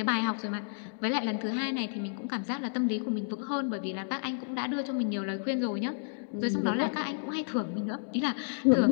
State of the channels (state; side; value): silent; right; digital silence